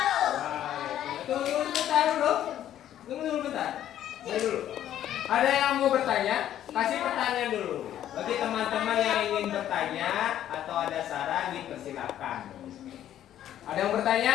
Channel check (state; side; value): quieter; right; 11.5 dB